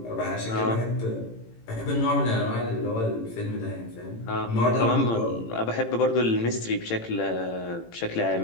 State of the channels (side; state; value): right; late; 18 ms